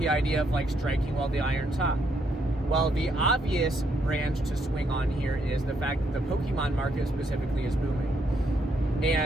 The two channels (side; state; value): both; normal; correlation 0.74